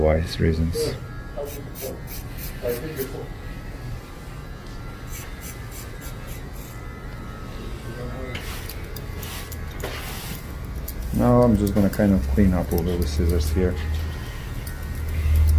reasons. Now I'm just gonna kind of clean up over the scissors here.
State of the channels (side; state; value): both; identical; correlation 1.00